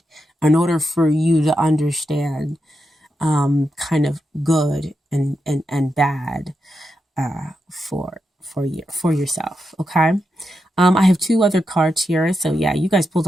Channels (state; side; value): normal; both; correlation 0.86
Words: in order for you to understand kind of good and bad for yourself. Okay. I have 2 other cards here. So yeah, you guys pulled